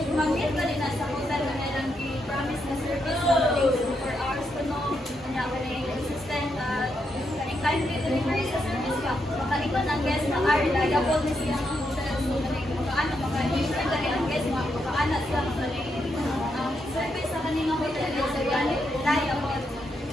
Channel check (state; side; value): normal; both; correlation 0.81